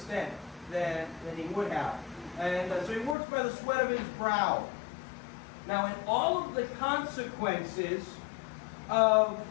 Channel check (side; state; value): right; drops out; at 3.2 s